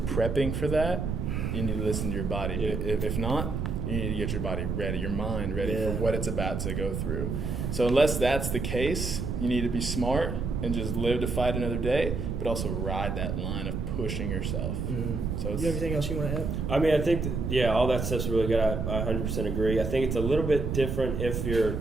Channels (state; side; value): noise; right; rumble, 2 dB below the sound